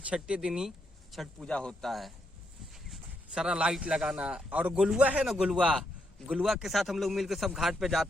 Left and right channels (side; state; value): both; normal; correlation 0.78